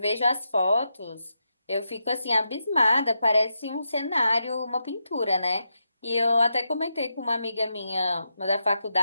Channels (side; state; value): both; inverted; correlation -0.86